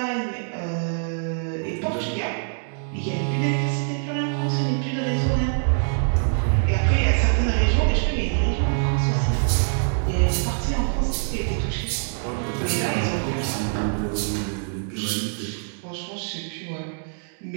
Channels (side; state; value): left; silent; 62 dB below the other